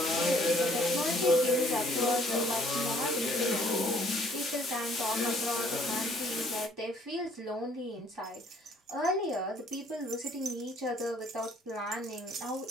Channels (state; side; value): normal; both; correlation 0.61